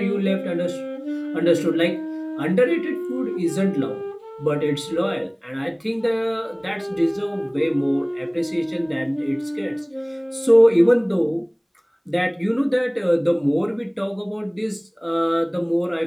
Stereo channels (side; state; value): both; identical; correlation 1.00